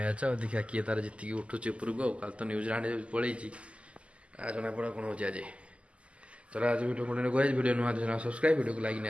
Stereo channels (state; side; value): late; left; 0.058 ms